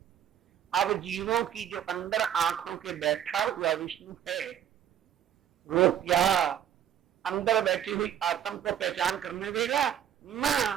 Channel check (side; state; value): left; quieter; 10.1 dB